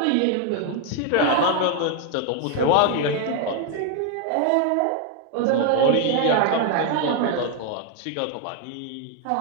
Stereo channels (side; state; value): both; different; correlation 0.01